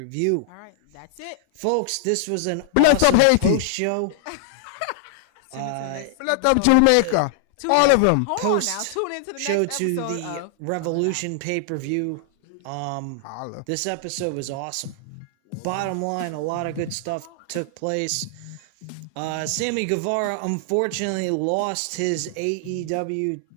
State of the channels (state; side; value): different; both; correlation -0.01